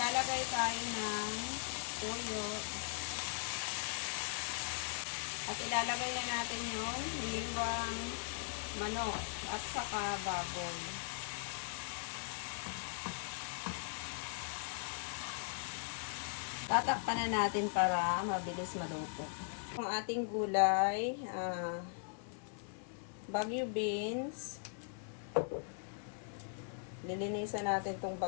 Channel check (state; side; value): silent; right; 52 dB below the other